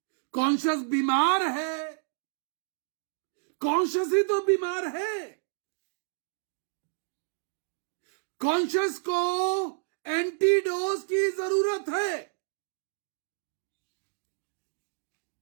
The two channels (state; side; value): silent; left; digital silence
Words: कॉन्शियस बीमार है, कॉन्शियस ही तो बीमार है। कॉन्शियस को एंटीडोज की जरूरत है।